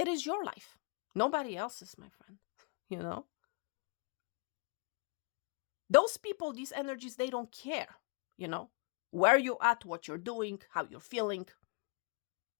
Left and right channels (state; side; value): quieter; right; 31.6 dB